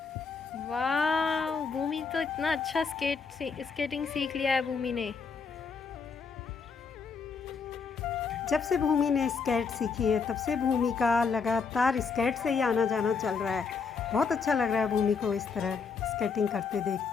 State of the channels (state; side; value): quieter; right; 5.3 dB